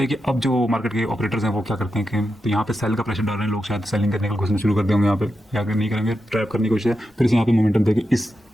कि अब जो मार्केट के ऑपरेटर्स हैं वो क्या करते हैं कि तो यहाँ पे सेल का प्रेशर डाल रहे हैं लोग, शायद सेलिंग करने का कोशिश शुरू कर देंगे यहाँ पे, या अगर नहीं करेंगे ट्रैप करने की कोशिश है, फिर से यहाँ पे मोमेंटम देके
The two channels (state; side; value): normal; both; correlation 0.88